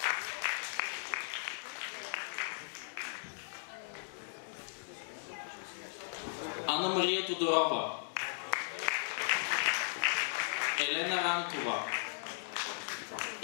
Анна Мария Тодорова, Елена Ранкова,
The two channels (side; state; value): right; silent; digital silence